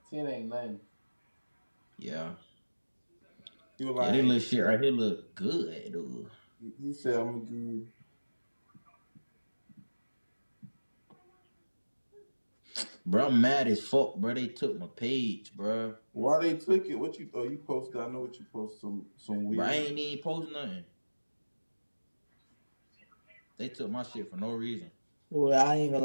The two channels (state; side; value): inverted; both; correlation -1.00